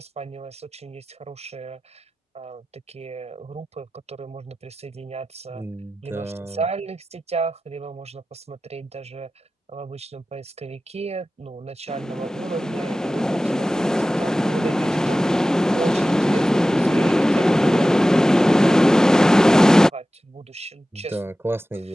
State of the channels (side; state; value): both; normal; correlation 0.95